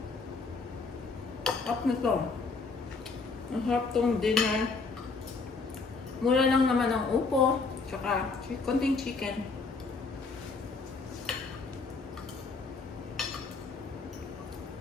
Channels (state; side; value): quieter; right; 4.2 dB